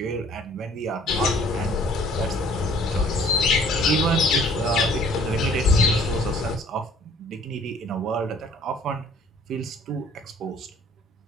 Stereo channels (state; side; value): normal; both; correlation 0.56